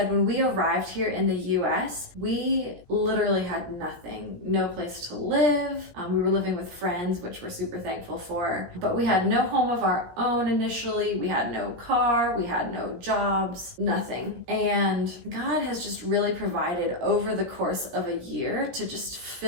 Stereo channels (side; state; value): left; late; 17 ms